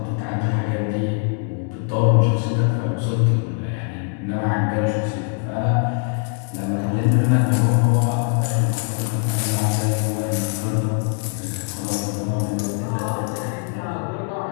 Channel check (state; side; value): quieter; right; 39.7 dB